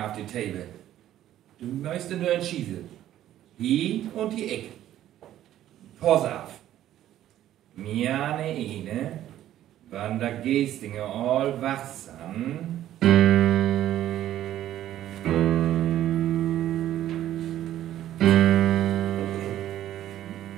auf die Table. Du möchtest nur entschießen. Hier und die Eck. Pass auf. Mir eine, wann der Gestinger all wachsam.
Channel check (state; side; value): quieter; left; 12.5 dB